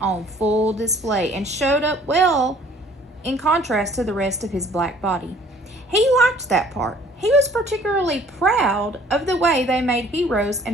full display and showed up well in contrast to the rest of his black body. He liked that part. He was particularly proud of the way they made heroes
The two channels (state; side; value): normal; both; correlation 0.55